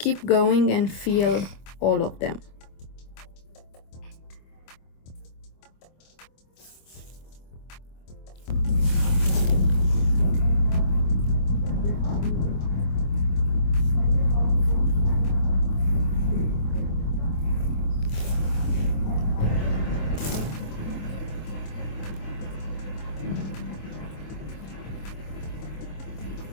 going and fill all of them.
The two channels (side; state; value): right; late; 25 ms